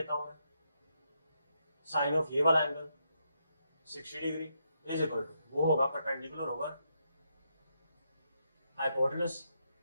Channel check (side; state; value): both; inverted; correlation -0.80